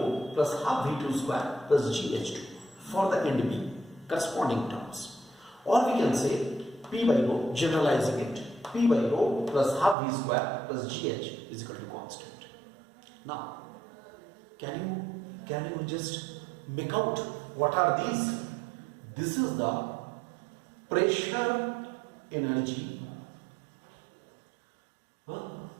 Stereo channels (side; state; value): left; drops out; at 10.0 s